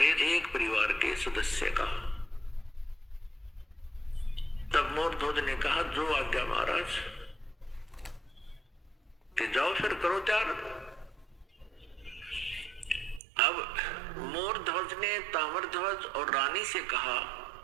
एक परिवार के सदस्य का। तब मोरध्वज ने कहा जो आज्ञा महाराज, कि जाओ फिर करो त्याग। अब मोरध्वज ने ताम्रध्वज और रानी से कहा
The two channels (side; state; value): left; drops out; at 13.2 s